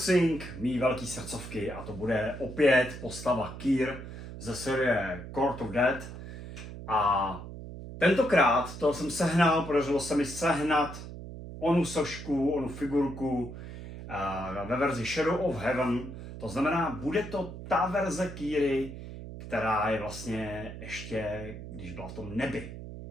mý velký srdcovky a to bude opět postava Kyr ze série Court of Death a tentokrát to jsem sehnal, podařilo se mi sehnat onu sošku, onu figurku ve verzi Shadow of Heaven. To znamená, bude to ta verze Kyry, která je vlastně ještě, když byla v tom nebi.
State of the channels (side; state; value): right; noise; hum, 11 dB below the sound